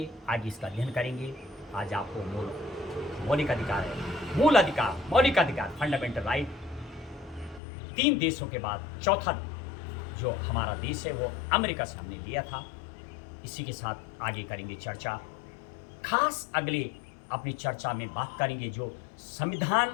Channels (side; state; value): right; drops out; at 7.6 s